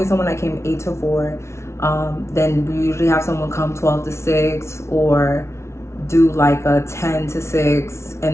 someone that came 8 to 4. Then we usually have someone come 12 to 6, or do like a 10 to 6,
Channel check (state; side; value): late; right; 0.13 ms